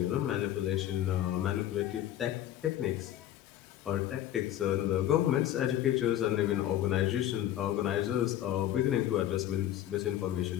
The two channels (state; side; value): quieter; right; 12.2 dB